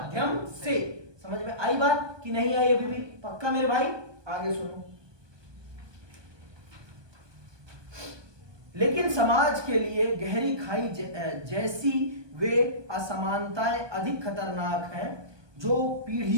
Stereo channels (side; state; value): left; late; 1.2 ms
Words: से। समझ में आई बात कि नहीं आई? अभी भी पक्का मेरे भाई? आगे सुनो। लेकिन समाज के लिए गहरी खाई जैसी वे असमानताएं अधिक खतरनाक हैं जो